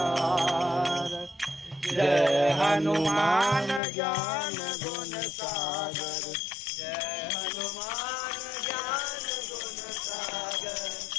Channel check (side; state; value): right; drops out; at 3.8 s